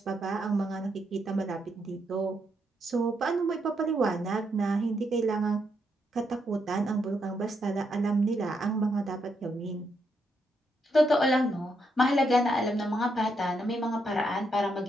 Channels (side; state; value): both; normal; correlation 0.79